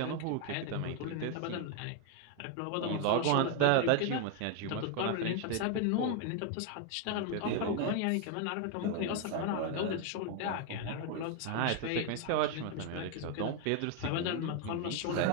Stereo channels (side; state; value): both; different; correlation 0.01